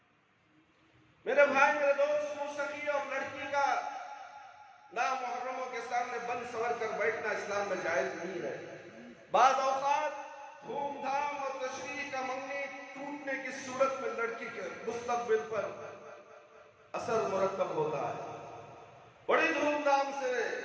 میرے بھائی میرے دوست، موسیقی اور لڑکی کا نامحرموں کے سامنے بند سور کر بیٹھنا اسلام میں جائز نہیں ہے۔ بعض اوقات دھوم دھام اور تشریح کا منگنی ٹوٹنے کی صورت میں لڑکی کے مستقبل پر اثر مرتب ہوتا ہے۔ بڑی دھوم دھام سے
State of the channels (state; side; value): identical; both; correlation 1.00